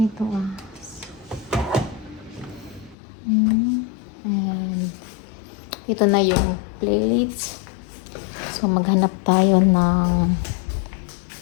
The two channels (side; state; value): right; drops out; at 3.0 s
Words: and ito na yung plates. So maghanap tayo ng